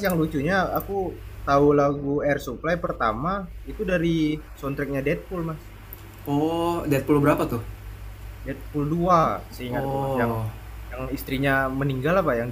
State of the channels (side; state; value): both; identical; correlation 1.00